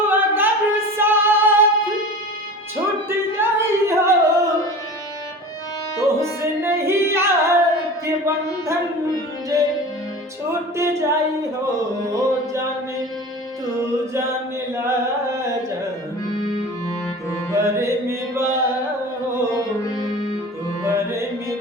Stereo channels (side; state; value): both; normal; correlation 0.36